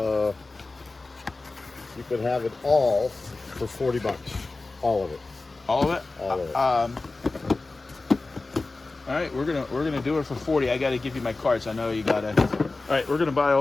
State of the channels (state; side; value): quieter; right; 3.4 dB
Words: You could have it all for $40. All of it. All of it? All of it. All right, we're gonna do it for 40. I gotta give you my cards. I know you gotta. All right, we're gonna buy